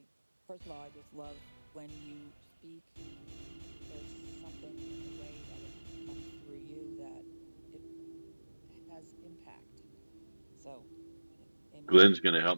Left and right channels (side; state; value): both; inverted; correlation -1.00